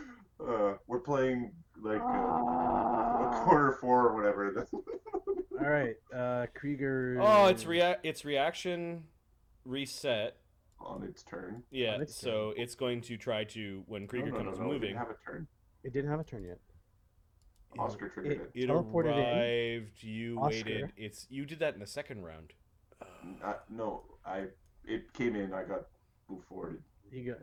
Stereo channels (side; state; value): both; identical; correlation 1.00